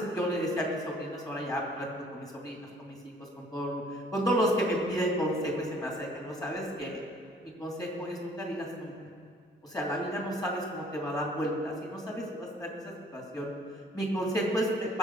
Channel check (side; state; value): both; normal; correlation 0.57